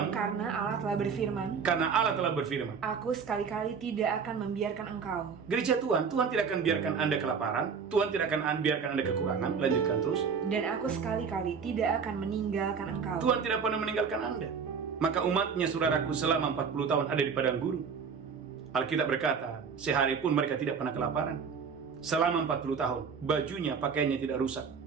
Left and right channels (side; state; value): left; quieter; 6.0 dB